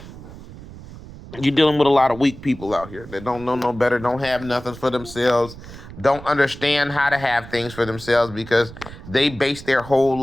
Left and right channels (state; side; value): noise; right; rumble, 16 dB below the sound